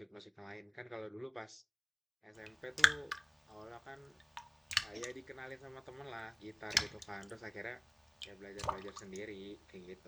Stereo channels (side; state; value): both; identical; correlation 1.00